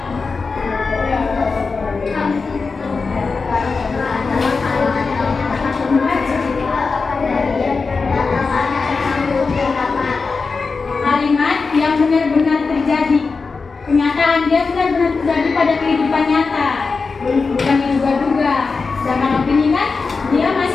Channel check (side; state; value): right; quieter; 4.5 dB